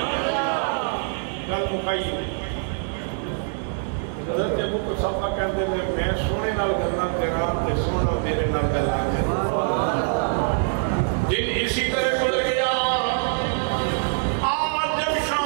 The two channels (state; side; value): silent; left; 63 dB below the other